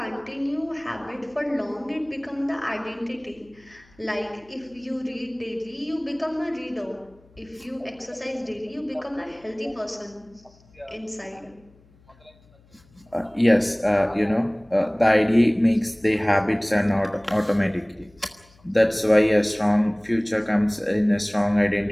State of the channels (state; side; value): noise; left; hum, 29 dB below the sound